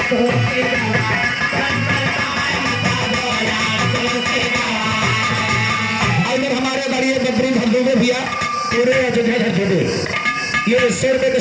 पूरे अयोध्या धरती में ये 100 रुपये का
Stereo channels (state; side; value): identical; both; correlation 1.00